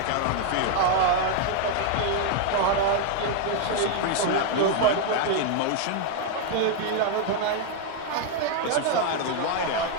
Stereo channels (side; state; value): both; different; correlation 0.00